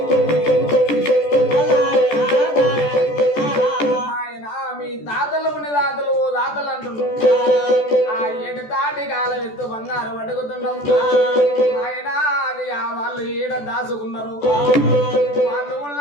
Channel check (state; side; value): late; right; 14 ms